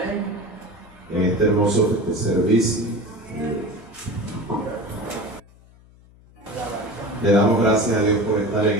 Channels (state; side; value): noise; left; hum, 26 dB below the sound